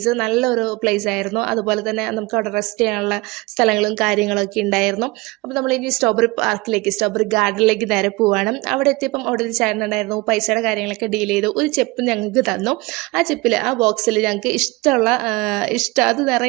നല്ലൊരു പ്ലേസ് ആയിരുന്നു. അതുപോലെ തന്നെ നമുക്ക് അവിടെ റെസ്റ്റ് ചെയ്യാനുള്ള സ്ഥലങ്ങളും കാര്യങ്ങളൊക്കെ ഉണ്ടായിരുന്നു. അപ്പോൾ നമ്മൾ ഇനി സ്ട്രോബെറി ഗാർഡനിലേക്ക് നേരെ പോവാണ്. അവിടെ എത്തിയപ്പം അവിടെ ഒരു ചേട്ടനുണ്ടായിരുന്നു. പൈസയുടെ കാര്യങ്ങളൊക്കെ ഡീൽ ചെയ്തു. ഒരു ചെപ്പ് ഞങ്ങൾക്ക് തന്നു. ആ ബോക്സിൽ ഞങ്ങൾക്ക് അത്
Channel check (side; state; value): left; quieter; 23.2 dB